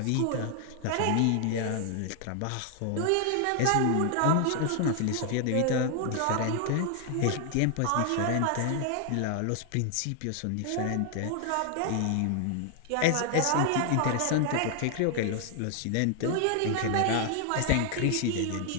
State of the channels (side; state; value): both; different; correlation 0.00